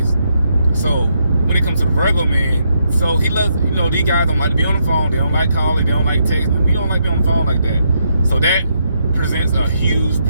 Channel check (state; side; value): inverted; both; correlation -0.78